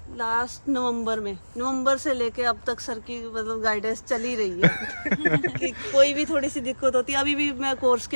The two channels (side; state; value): both; inverted; correlation -1.00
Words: लास्ट नवंबर से लेके अब तक सर की मतलब गाइडेंस चल ही रही है कि कोई भी थोड़ी सी दिक्कत होती है। अभी भी मैं कोर्स